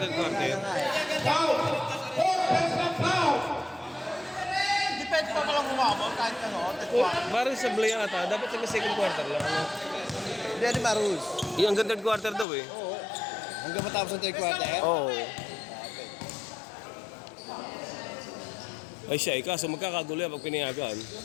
quarter. Depende pa palang umabot kahit ano. Parang sa Blay ata, dapat sa second quarter lang. Ano? Hindi, di ba rules? Yung hanggang third quarter daw eh. Oo. Hanggang matapos ang third quarter? Oo. Ay siya, kaso magkakagulo yan pag pinayagan.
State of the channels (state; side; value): drops out; right; at 12.5 s